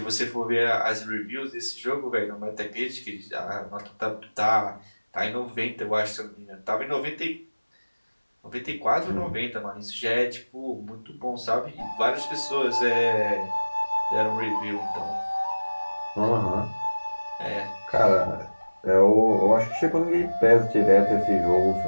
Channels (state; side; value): inverted; both; correlation -1.00